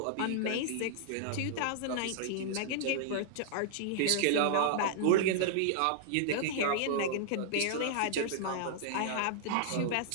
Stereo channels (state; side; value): different; both; correlation -0.01